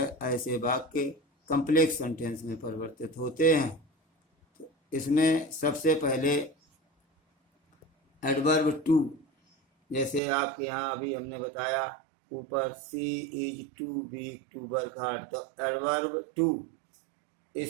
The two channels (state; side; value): drops out; left; at 10.2 s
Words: ऐसे वाक्य कम्प्लेक्स सेंटेंस में परिवर्तित होते हैं। तो इसमें सबसे पहले एडवर्ब टू, जैसे आपके यहाँ अभी हमने बताया ऊपर she is too weak to work hard, तो एडवर्ब टू